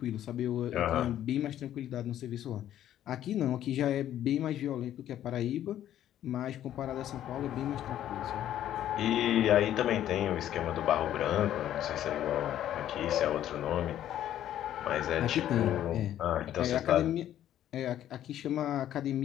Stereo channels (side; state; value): right; quieter; 11.7 dB